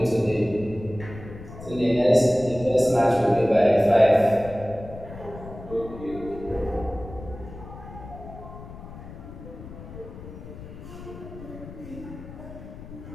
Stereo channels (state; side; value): noise; left; rumble, 14 dB below the sound